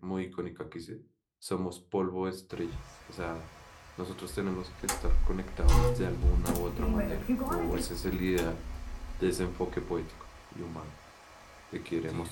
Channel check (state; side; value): identical; both; correlation 1.00